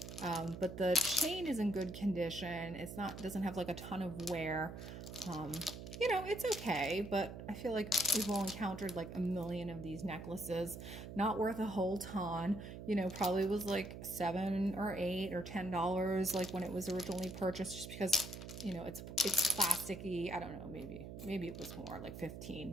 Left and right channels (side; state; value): right; noise; hum, 10 dB below the sound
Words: But the chain is in good condition. It's not, doesn't have like a ton of wear. You know, it's okay, but I feel like we've all encountered like a million of these necklaces. Not worth a whole ton. You know, probably was like $7 or $8 or $10 like when it was originally purchased, just because, you know, it's plasticky. I don't know, maybe it was more like